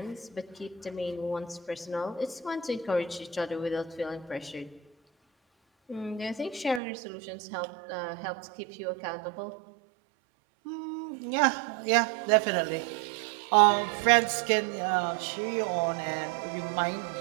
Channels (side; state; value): left; drops out; at 6.8 s